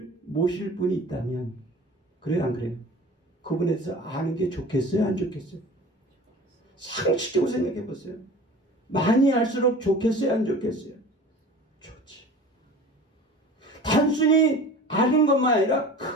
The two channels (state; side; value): normal; both; correlation 0.40